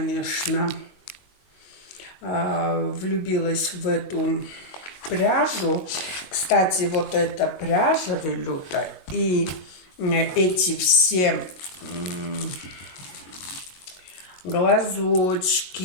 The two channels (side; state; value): right; late; 22 ms